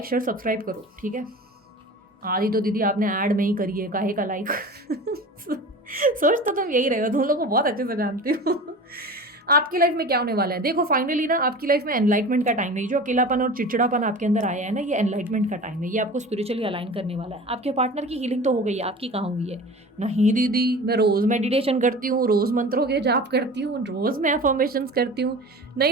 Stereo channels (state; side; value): normal; both; correlation 0.36